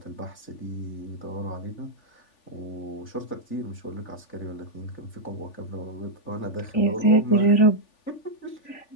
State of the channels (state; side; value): late; right; 3.4 ms